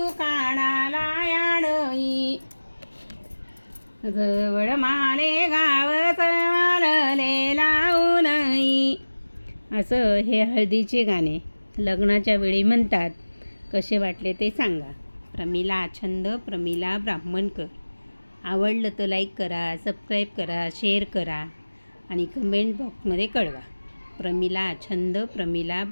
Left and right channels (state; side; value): inverted; both; correlation -1.00